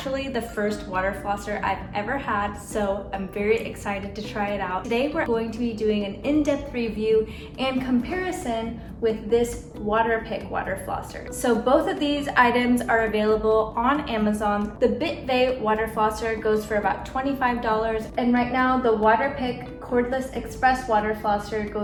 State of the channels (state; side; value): identical; both; correlation 1.00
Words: the first water flosser I've ever had, so I'm very excited to try it out. Today we're going to be doing an in-depth review and comparison with this Waterpik water flosser. So both of these items are available on Amazon. The Bitvae water flosser goes for about $25, and right now the Waterpik Cordless Express water flosser